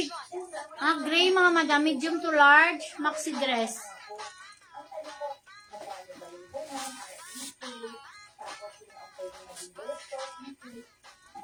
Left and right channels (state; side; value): identical; both; correlation 1.00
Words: Gray mga madam. Medium to large. Maxi dress.